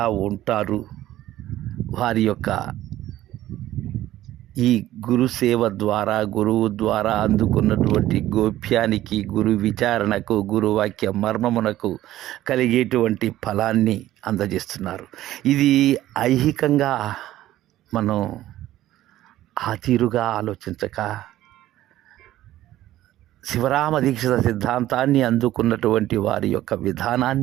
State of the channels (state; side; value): quieter; left; 14.3 dB